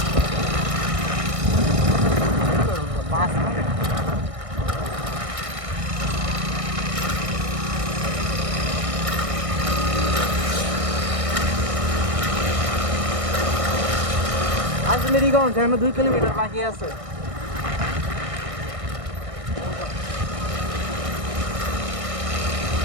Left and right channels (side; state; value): left; late; 1.6 ms